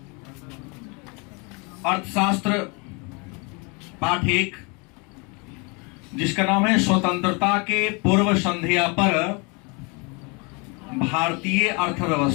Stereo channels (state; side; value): quieter; right; 31.0 dB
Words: अर्थशास्त्र पाठ 1, जिसका नाम है स्वतंत्रता के पूर्व संध्या पर भारतीय